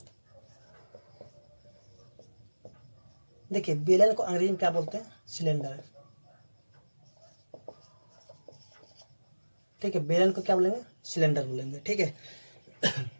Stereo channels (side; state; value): both; inverted; correlation -1.00